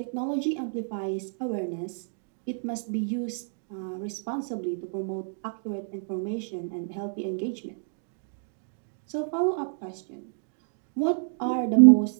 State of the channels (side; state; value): left; silent; digital silence